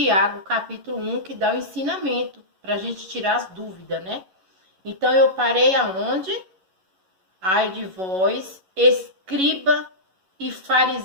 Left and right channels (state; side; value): late; left; 11 ms